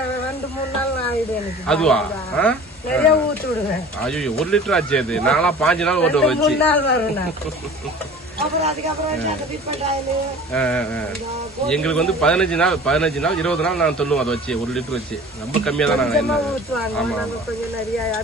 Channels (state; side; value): normal; both; correlation 0.43